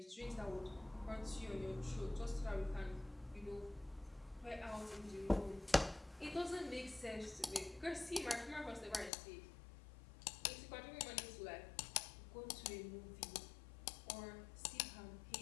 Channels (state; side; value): drops out; right; at 9.1 s